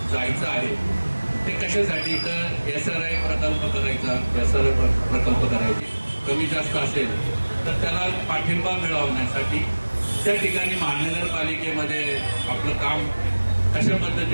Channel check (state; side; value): inverted; both; correlation -1.00